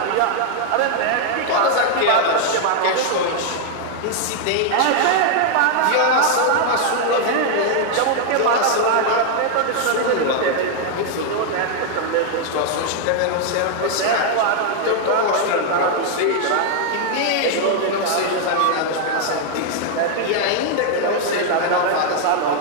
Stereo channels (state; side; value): different; both; correlation 0.00